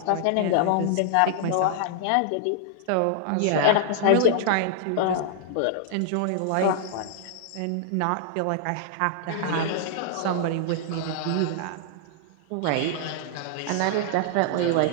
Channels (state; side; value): different; both; correlation -0.01